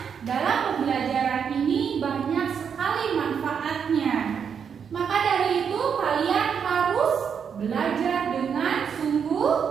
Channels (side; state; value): left; quieter; 7.1 dB